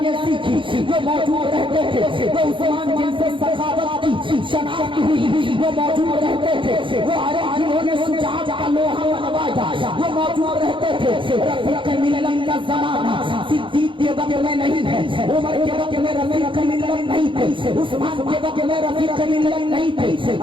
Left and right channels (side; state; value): left; late; 0.24 ms